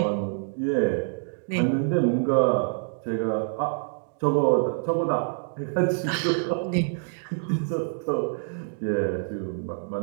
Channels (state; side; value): silent; left; digital silence